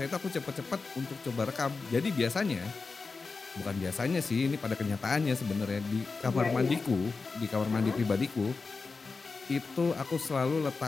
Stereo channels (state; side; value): quieter; right; 4.3 dB